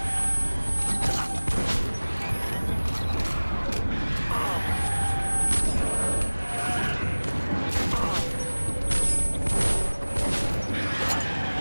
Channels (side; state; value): both; inverted; correlation -1.00